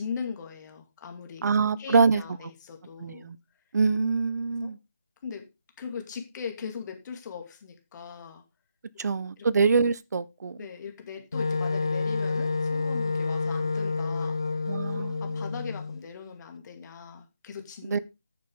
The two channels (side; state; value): both; inverted; correlation -0.78